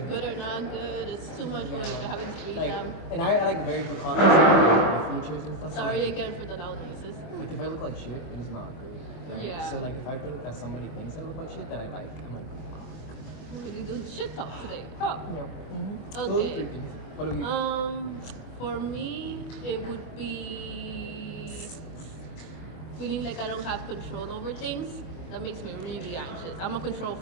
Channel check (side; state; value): right; late; 24 ms